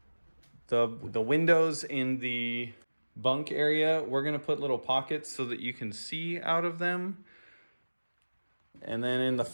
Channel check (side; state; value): both; inverted; correlation -1.00